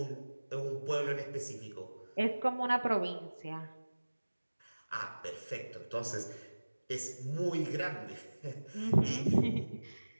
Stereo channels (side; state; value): both; inverted; correlation -1.00